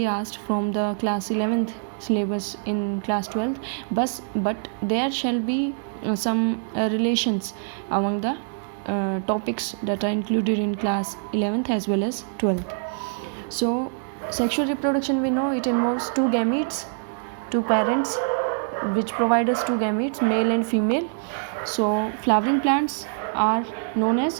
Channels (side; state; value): left; silent; digital silence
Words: asked from the class 11th syllabus in class 12th, but there shall be some relations among the topics that are included in class 11th as well as 12th. So sexual reproduction, we know it involves two gametes, two parents which provide us two gametes, male and female. So flowering plants are known